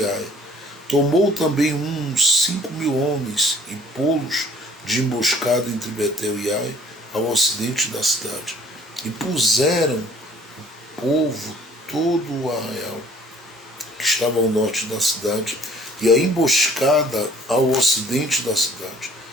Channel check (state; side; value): normal; both; correlation 0.55